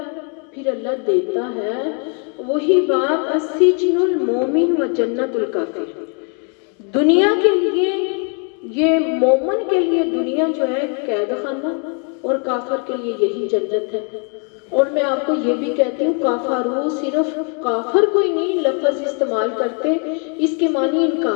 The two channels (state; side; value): quieter; right; 39.0 dB